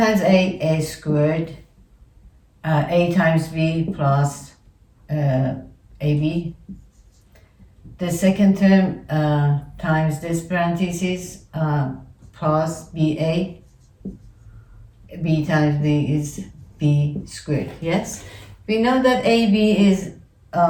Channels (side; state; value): both; identical; correlation 1.00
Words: A squared. A times B plus AB. The second term times this parenthesis plus BA. B times B is B squared. Yes? We know that AB is